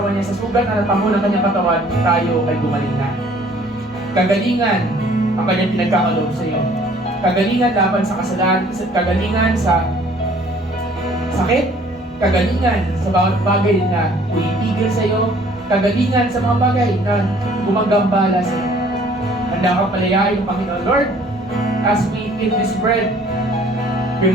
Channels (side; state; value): both; normal; correlation 0.56